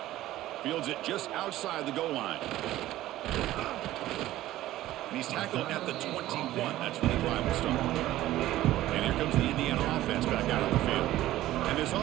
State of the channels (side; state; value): left; quieter; 14.9 dB